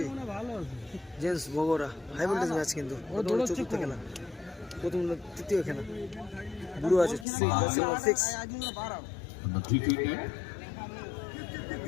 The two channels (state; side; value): drops out; right; at 7.2 s